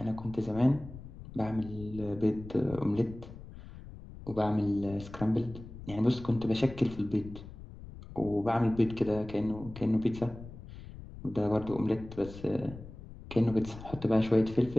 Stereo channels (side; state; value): left; noise; rumble, 15 dB below the sound